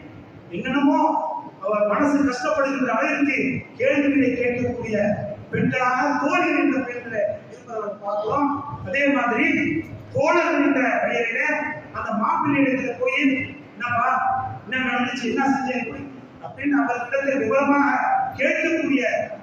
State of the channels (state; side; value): identical; both; correlation 1.00